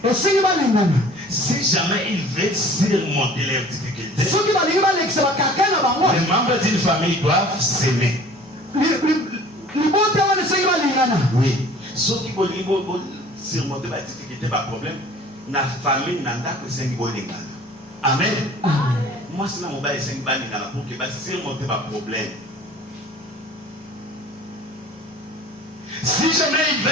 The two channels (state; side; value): normal; both; correlation 0.48